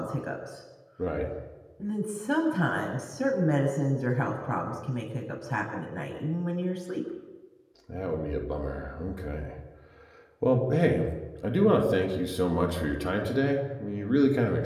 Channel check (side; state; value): both; identical; correlation 1.00